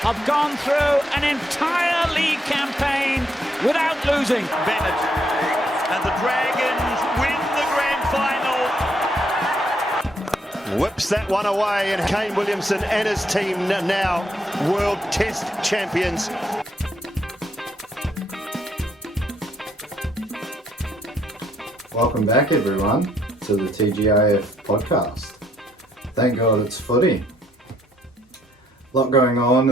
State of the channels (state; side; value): normal; both; correlation 0.71